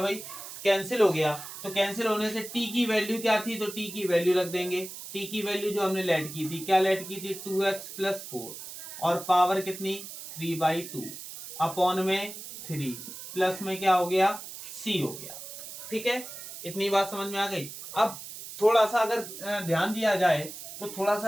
भाई कैंसिल हो गया, तो कैंसिल होने से t की वैल्यू क्या थी, तो t की वैल्यू रख देंगे। t की वैल्यू जो हमने लेट की थी, क्या लेट की थी 2x + 4 और पावर कितनी 3/2 अपॉन में 3 प्लस में क्या हो गया c हो गया। ठीक है। इतनी बात समझ में आ गई। अब थोड़ा सा अगर ध्यान दिया जाए, तो थोड़ा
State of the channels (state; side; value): noise; right; hiss, 11 dB below the sound